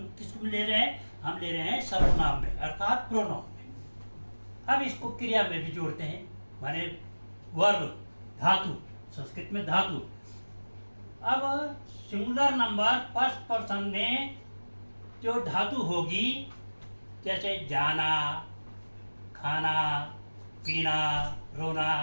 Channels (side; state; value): both; inverted; correlation -1.00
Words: किसको ले रहे हैं, हम ले रहे हैं सर्वनाम में, अर्थात प्रोनाउन में। अब इसको क्रिया में भी जोड़ते हैं, माने वर्ब, धातु, संस्कृत में धातु। अब सिंगुलर नंबर फर्स्ट पर्सन में जो धातु होगी, जैसे जाना, खाना, पीना, रोना,